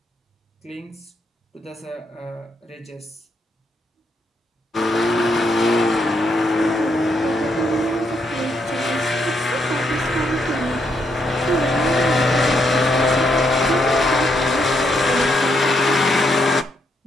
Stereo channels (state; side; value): normal; both; correlation 0.77